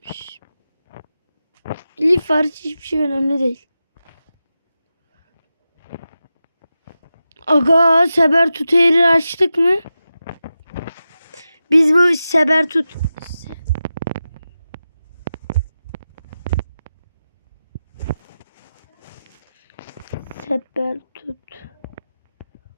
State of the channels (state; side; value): inverted; both; correlation -0.92